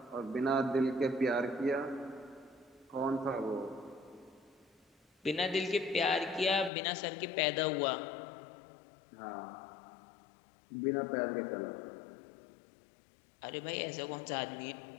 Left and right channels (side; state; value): right; drops out; at 6.7 s